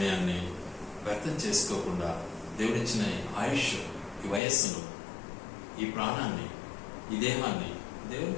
వ్యర్థం చేసుకోకుండా, దేవుడిచ్చిన ఆయుష్, ఈ వయస్సును, ఈ ప్రాణాన్ని, ఈ దేహాన్ని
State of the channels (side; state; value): right; drops out; at 4.4 s